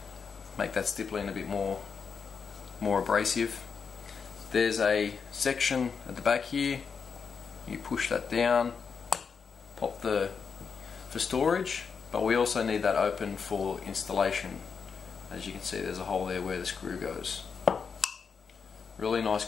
make that stippling a bit more abrasive. There's a section at the back here. You push that down, pop for storage, but we also need that open for installation. As you can see, there's a hole there where the screw goes. Really nice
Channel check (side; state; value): right; quieter; 5.9 dB